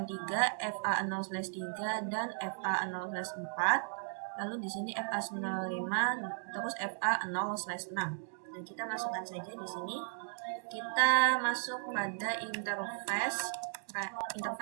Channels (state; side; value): silent; left; digital silence